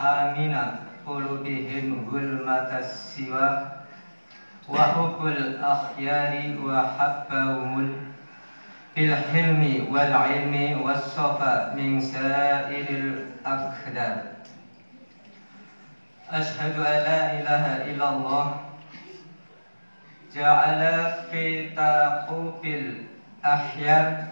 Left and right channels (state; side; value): inverted; both; correlation -1.00